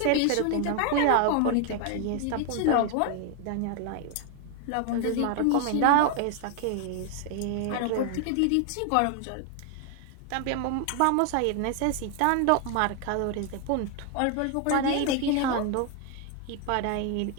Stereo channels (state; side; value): different; both; correlation 0.00